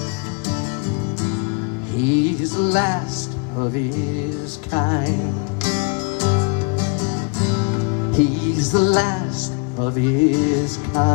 He's the last of his kind. He's the last of his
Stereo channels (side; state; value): right; quieter; 34.2 dB